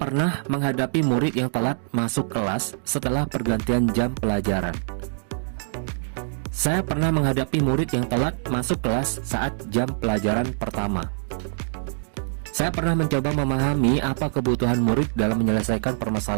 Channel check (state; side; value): silent; left; digital silence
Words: menghadapi murid yang telat masuk kelas setelah pergantian jam pelajaran. Saya pernah menghadapi murid yang telat masuk kelas saat jam pelajaran pertama. Saya pernah mencoba memahami apa kebutuhan murid dalam menyelesaikan